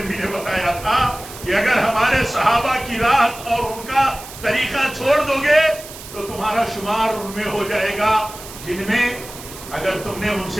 نے بتایا تھا کہ اگر ہمارے صحابہ کی راہ اور ان کا طریقہ چھوڑ دو گے تو تمہارا شمار ان میں ہو جائے گا جن میں اگر تم نے ان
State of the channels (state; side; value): noise; right; hiss, 15 dB below the sound